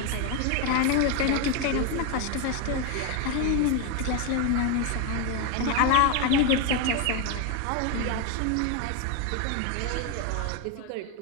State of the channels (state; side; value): different; both; correlation 0.01